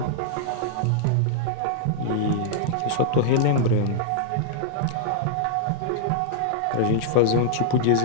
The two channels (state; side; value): different; both; correlation -0.02